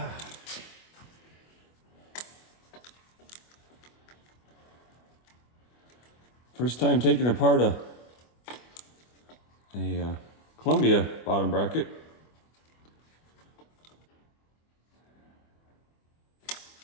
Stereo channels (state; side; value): late; right; 25 ms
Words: First time taking apart a Columbia bottom bracket.